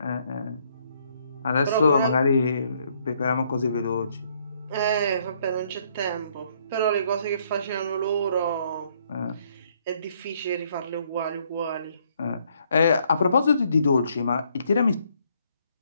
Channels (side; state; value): both; inverted; correlation -0.68